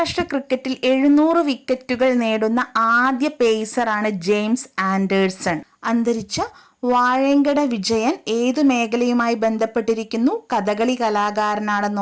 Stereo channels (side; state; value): both; identical; correlation 1.00